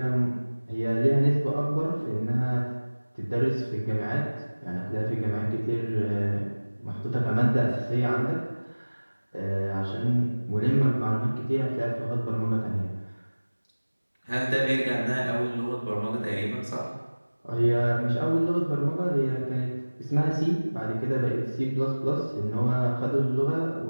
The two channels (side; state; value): both; inverted; correlation -1.00